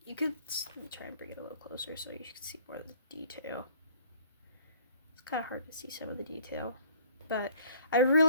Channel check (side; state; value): both; inverted; correlation -0.55